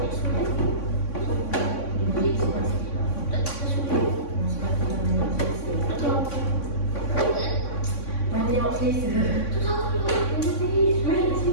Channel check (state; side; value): late; right; 3.6 ms